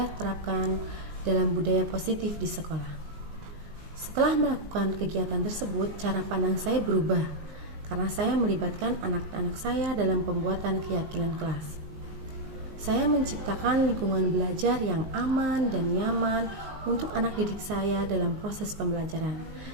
terapkan dalam budaya positif di sekolah. Setelah melakukan kegiatan tersebut, cara pandang saya berubah karena saya melibatkan anak-anak saya dalam pembuatan keyakinan kelas. Saya menciptakan lingkungan belajar yang aman dan nyaman untuk anak didik saya dalam proses pembelajaran,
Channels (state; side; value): late; left; 19 ms